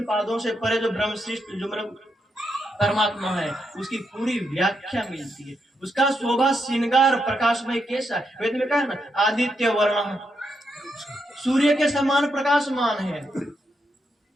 पादों से परे जो ब्रह्मशिष्ट जो मतलब परमात्मा है, उसकी पूरी व्याख्या मिलती है। उसका शोभा श्रृंगार प्रकाशमय कैसा है, वेद में कहा ना, आदित्य वर्ण सूर्य के समान प्रकाशमान है।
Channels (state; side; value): normal; both; correlation 0.82